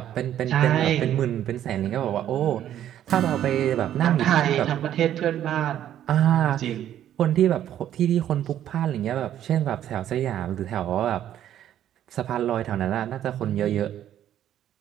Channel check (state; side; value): quieter; left; 11.2 dB